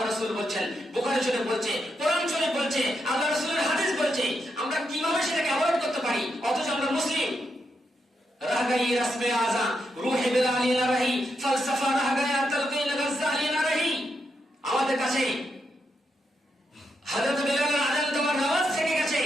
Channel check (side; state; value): both; normal; correlation 0.82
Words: রাসূল বলছেন, বুখারী শরীফ বলছে, কোরআন শরীফ বলছে, আল্লাহ রাসূলের হাদিস বলছে, আমরা কিভাবে সেটাকে অ্যাভয়েড করতে পারি অথচ আমরা মুসলিম। রাগাই রাসমে আযা রূহে বিলালি না রহি, ফলসফা রাগায়া তালকিন গজ্জালি না রহি। আমাদের কাছে হযরত বিলালের আযান তোমার নামাজ থেকে গেছে,